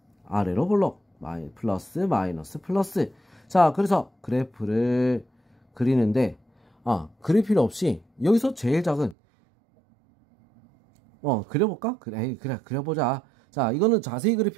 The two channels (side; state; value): left; drops out; at 9.2 s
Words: 아래로 볼록 플러스 마이너스 플러스. 자, 그래서 그래프를 그리는데 그릴 필요 없이 여기서 제일 작은 그려볼까? 그래, 그려보자. 자, 이거는 자세히 그릴